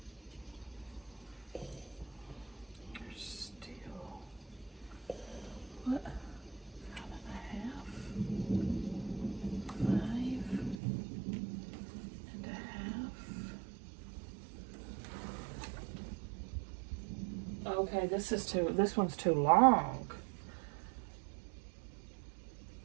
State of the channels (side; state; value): left; drops out; at 10.8 s